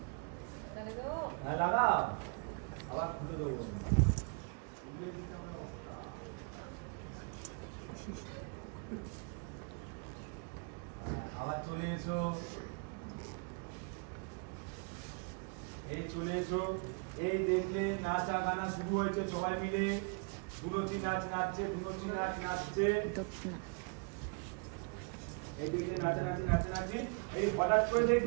চলে এসো, এই দেখলে নাচা গানা শুরু হয়েছে, সবাই মিলে ধুনুচি নাচ নাচছে, ধুনুচি নাচ নাচছে, এই দেখলে নাচানাচি নাচানাচি, এই হঠাৎ করে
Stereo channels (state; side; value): quieter; left; 36.9 dB